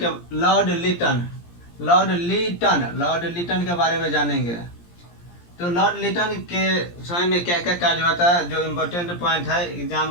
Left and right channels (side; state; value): right; late; 17 ms